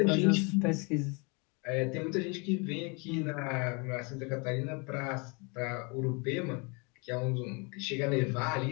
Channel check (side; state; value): right; quieter; 31.6 dB